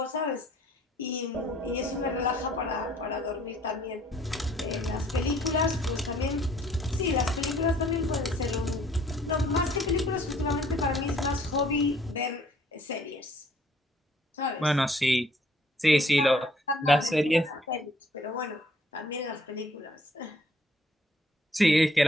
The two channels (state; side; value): normal; both; correlation 0.60